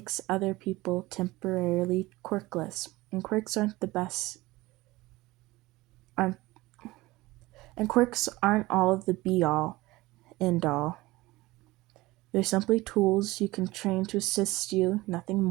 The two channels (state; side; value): quieter; left; 19.7 dB